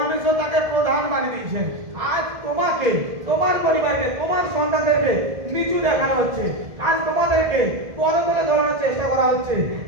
তাকে প্রধান বানিয়ে দিয়েছেন। আজ তোমাকে, তোমার পরিবারকে, তোমার সন্তানদেরকে নিচু দেখানো হচ্ছে। আজ তোমাদেরকে পদতলে ধরানোর চেষ্টা করা হচ্ছে।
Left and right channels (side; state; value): left; late; 1.7 ms